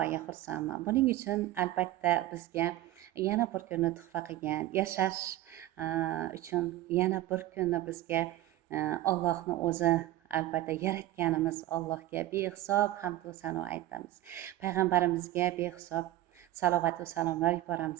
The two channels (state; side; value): quieter; left; 15.0 dB